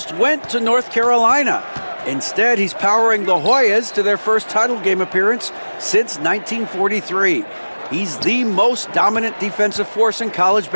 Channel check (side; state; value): both; inverted; correlation -1.00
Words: went to North Carolina. Instead, he's powering the Hoyas to their first title game appearance since 1943. He's the most dominant defensive force in college